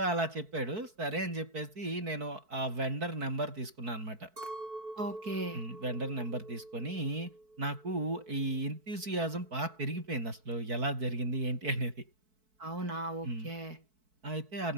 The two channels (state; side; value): late; left; 4.6 ms